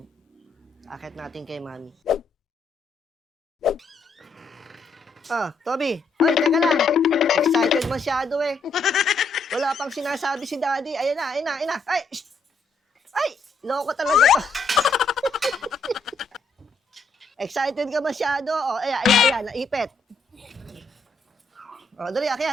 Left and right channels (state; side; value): quieter; right; 3.5 dB